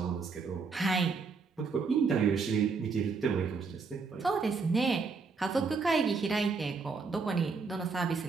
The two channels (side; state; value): left; quieter; 4.8 dB